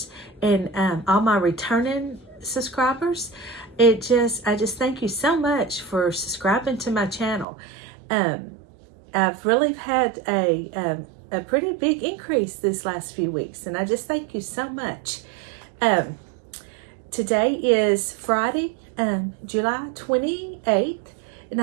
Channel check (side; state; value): left; drops out; at 7.5 s